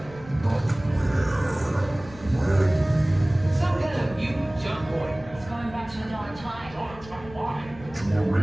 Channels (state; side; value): noise; left; rumble, 19 dB below the sound